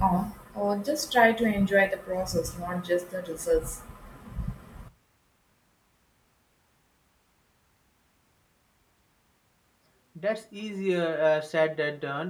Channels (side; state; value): both; identical; correlation 1.00